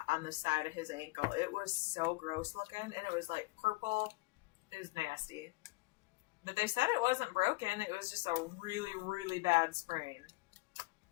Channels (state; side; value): quieter; right; 24.2 dB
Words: on the side of his ankle. It was so gross looking, and it was like purple. It was nasty. But they said it wasn't broken. It was just a really, really bad sprain.